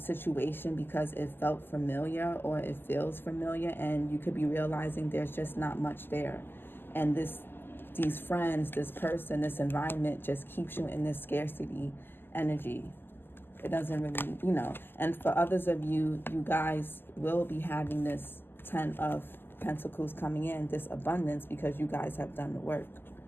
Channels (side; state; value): right; late; 0.098 ms